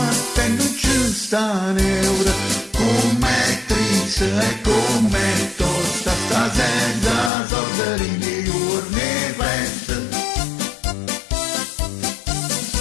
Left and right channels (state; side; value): drops out; right; at 7.3 s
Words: te non ci sta neura, com'è triste e com'è tosta, sta senza soldi nei giorni festa.